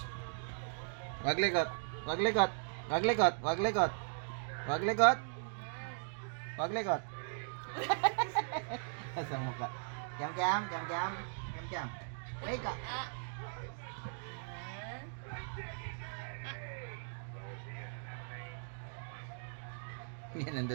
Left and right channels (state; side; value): silent; left; digital silence